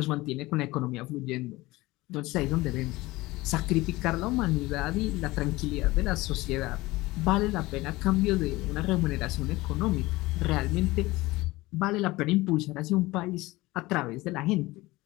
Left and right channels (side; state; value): right; quieter; 20.0 dB